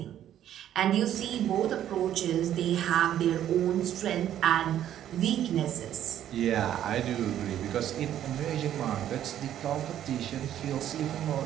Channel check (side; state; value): left; quieter; 11.2 dB